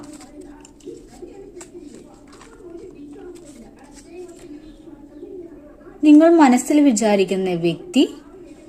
നിങ്ങൾ മനസ്സിൽ വിചാരിക്കുന്ന വ്യക്തി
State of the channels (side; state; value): both; identical; correlation 1.00